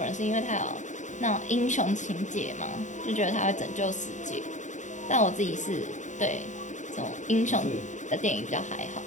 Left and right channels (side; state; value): right; late; 0.36 ms